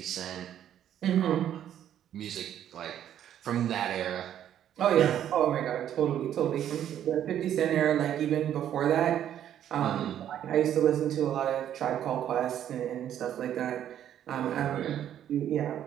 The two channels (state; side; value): quieter; left; 10.5 dB